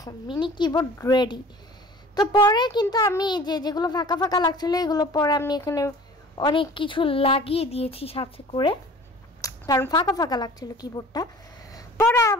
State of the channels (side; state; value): both; normal; correlation 0.45